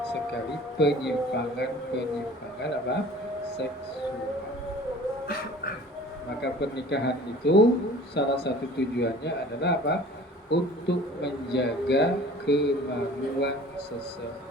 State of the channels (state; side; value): normal; both; correlation 0.46